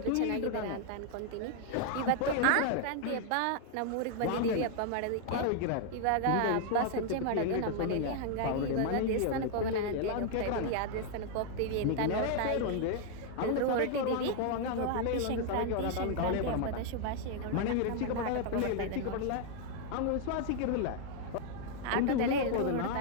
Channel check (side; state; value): both; different; correlation 0.00